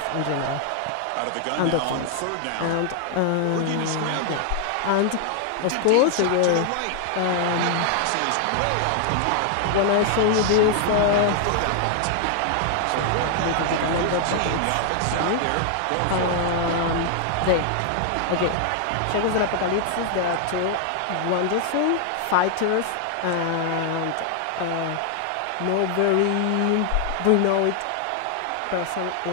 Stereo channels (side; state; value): both; different; correlation 0.00